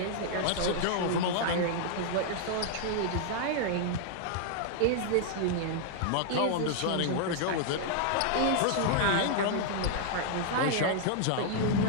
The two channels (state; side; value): different; both; correlation -0.01